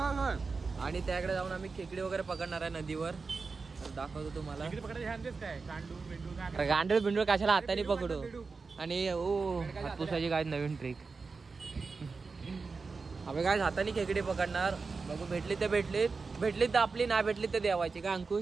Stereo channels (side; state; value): left; quieter; 4.5 dB